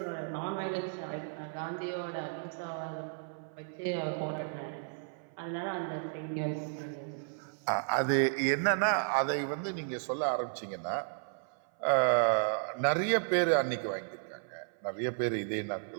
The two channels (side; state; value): left; silent; 55 dB below the other